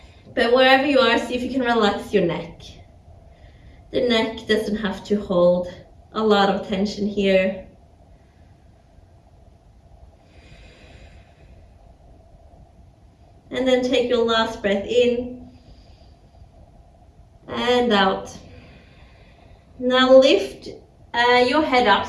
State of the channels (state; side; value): identical; both; correlation 1.00